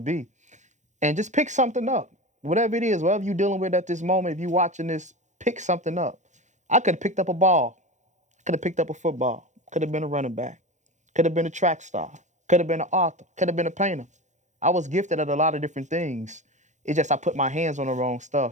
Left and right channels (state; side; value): late; left; 0.35 ms